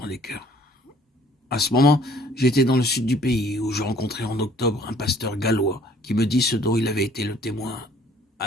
les cœurs. À ce moment, j'étais dans le sud du pays, où je rencontrai en octobre un pasteur gallois qui me dit ce dont il avait été le témoin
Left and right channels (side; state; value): both; normal; correlation 0.57